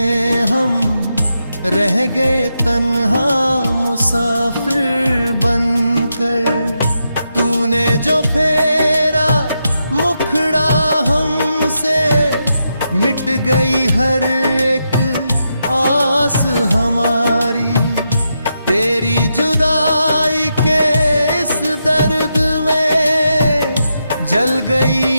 हम रह गए तन्हा मुसाफिर बनकर। तूने जो फेरा मुखड़ा हमसे, मिट गई हर एक आस हमारी। तेरी जुदाई के इस दर्द में जल गई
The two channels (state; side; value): inverted; both; correlation -0.85